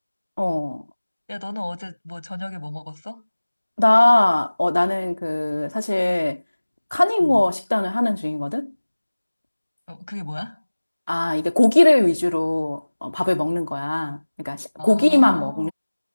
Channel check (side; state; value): both; inverted; correlation -1.00